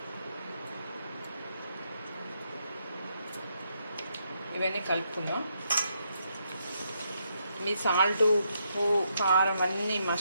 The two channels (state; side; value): inverted; both; correlation -0.78